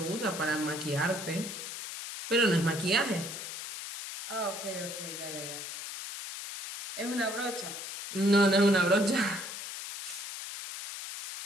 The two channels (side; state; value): left; noise; hiss, 8 dB below the sound